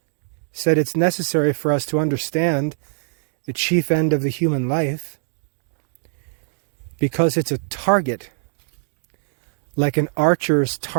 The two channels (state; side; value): silent; left; digital silence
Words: said it's necessary for us to understand the chief end of the human life because it's a target, like an archer's